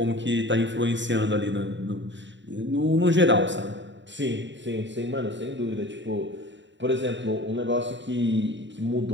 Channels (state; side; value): late; left; 0.53 ms